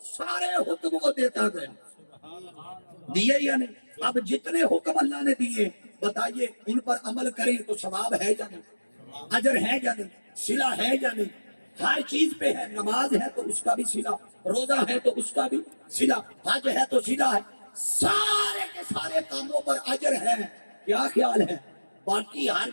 سارے حکم وہ دیتا گیا. دیے یا نہیں؟ اب جتنے حکم اللہ نے دیے بتائیے ان پر عمل کریں تو ثواب ہے یا نہیں, اجر ہے یا نہیں, صلہ ہے یا نہیں؟ ہر چیز پہ ہے. نماز ہے تو اس کا بھی صلہ, روزہ ہے تو اس کا بھی صلہ, حج ہے تو صلہ ہے. سارے کے سارے کاموں پر اجر ہے. کیا خیال ہے؟ باقی ہر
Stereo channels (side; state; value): both; inverted; correlation -1.00